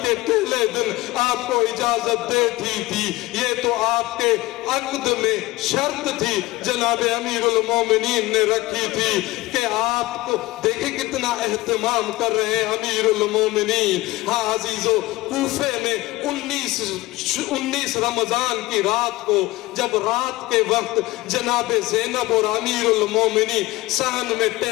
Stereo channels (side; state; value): right; quieter; 19.4 dB